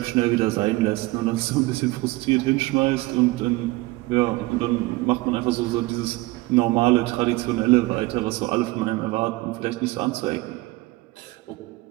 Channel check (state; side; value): quieter; left; 21.0 dB